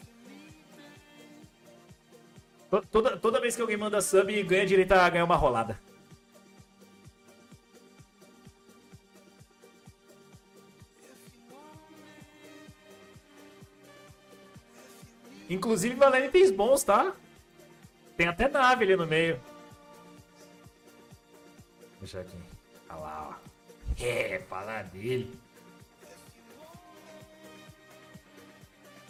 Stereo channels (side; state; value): both; identical; correlation 1.00